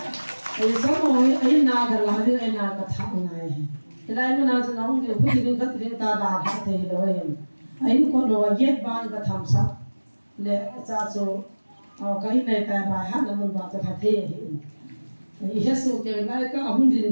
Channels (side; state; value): both; inverted; correlation -1.00